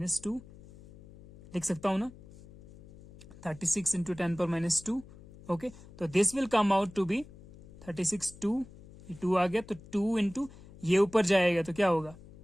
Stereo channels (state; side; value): noise; left; hum, 20 dB below the sound